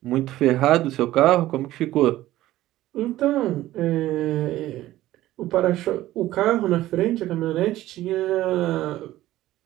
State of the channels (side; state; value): left; quieter; 15.3 dB